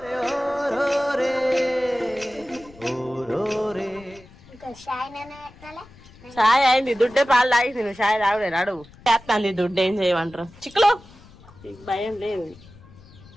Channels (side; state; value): left; noise; rumble, 22 dB below the sound